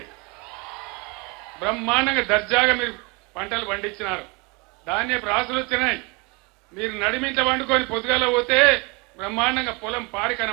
బ్రహ్మాండంగా దర్జాగా మీరు పంటలు పండించినారు. ధాన్యపు రాసులు వచ్చినాయి. మీరు నడిమింట వండుకొని పొద్దుగాల పోతే బ్రహ్మాండంగా పొలం పారి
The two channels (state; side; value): quieter; left; 28.9 dB